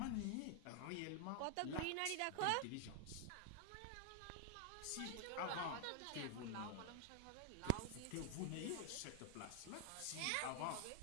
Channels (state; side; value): different; both; correlation 0.00